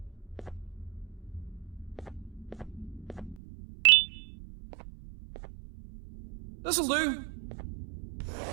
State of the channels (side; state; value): left; drops out; at 3.4 s